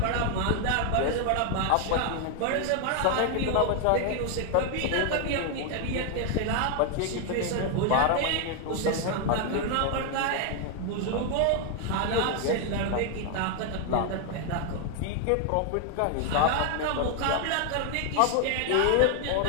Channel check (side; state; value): both; different; correlation 0.00